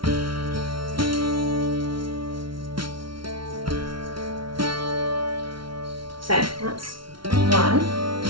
So, that's one.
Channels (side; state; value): left; late; 0.74 ms